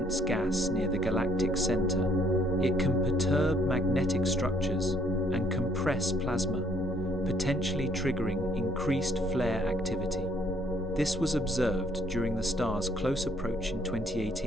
gas near the galactic center, it can perturb magnetic structures and compress plasma, potentially triggering increased flare activity. This was observed during the star's close approach in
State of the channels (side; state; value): both; normal; correlation 0.65